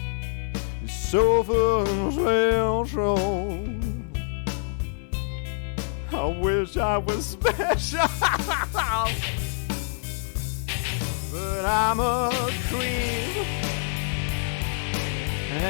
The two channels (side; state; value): right; silent; 59 dB below the other